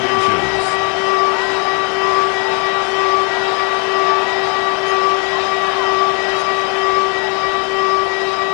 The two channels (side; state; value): right; quieter; 34.3 dB